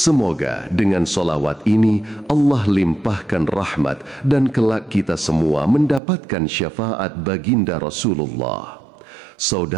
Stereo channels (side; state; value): left; drops out; at 6.0 s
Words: dengan solawat ini Allah limpahkan rahmat dan kelak kita semua mendapatkan syafaat baginda Rasulullah.